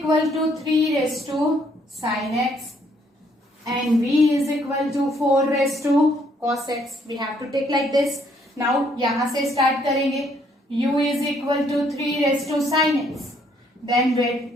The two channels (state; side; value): normal; both; correlation 0.67